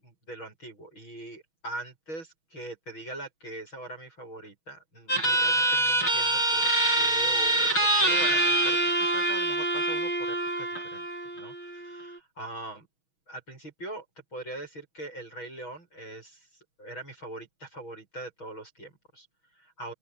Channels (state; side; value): late; right; 6.2 ms